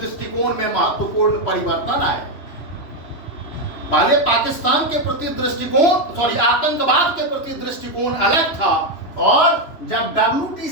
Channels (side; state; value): right; late; 3.0 ms